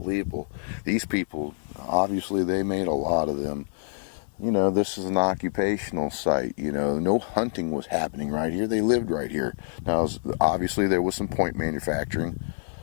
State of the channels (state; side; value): silent; right; digital silence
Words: These people, obviously they made a lot of them. You know, this is an occupational site. You know, no hunting was happening right here. They lived right here. Now, obviously there was some point manufacturing,